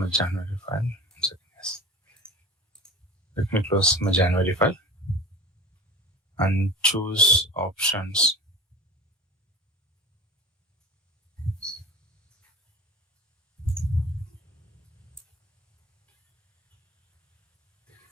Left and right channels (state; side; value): normal; both; correlation 0.37